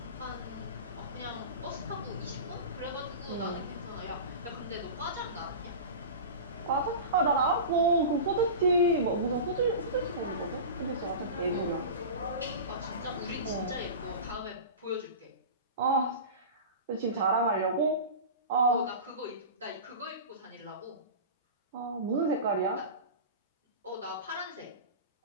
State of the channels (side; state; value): both; inverted; correlation -0.30